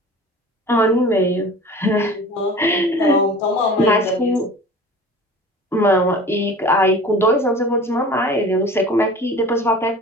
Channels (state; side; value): normal; both; correlation 0.41